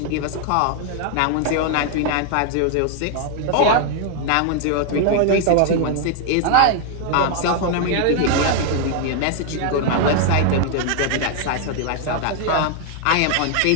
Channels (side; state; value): both; different; correlation 0.00